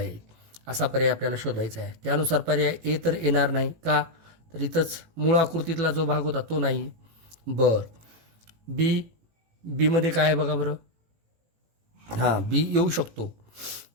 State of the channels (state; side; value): late; left; 18 ms